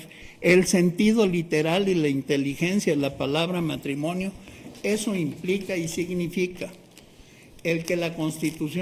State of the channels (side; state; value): both; identical; correlation 1.00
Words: El sentido literal y la inteligencia de la palabra matrimonio, eso implica y significa el que la